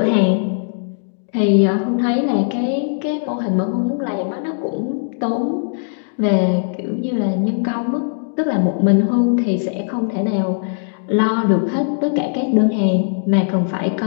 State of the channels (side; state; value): right; silent; digital silence